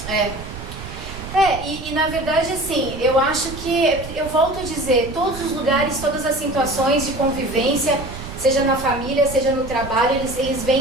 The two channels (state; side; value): noise; right; rumble, 12 dB below the sound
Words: E na verdade, assim, eu acho que, eu volto a dizer, todos os lugares, todas as situações de convivência, seja na família, seja no trabalho, eles